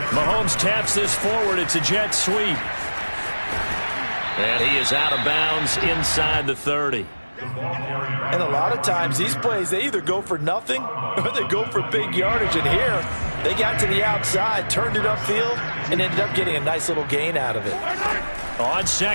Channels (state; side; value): inverted; both; correlation -1.00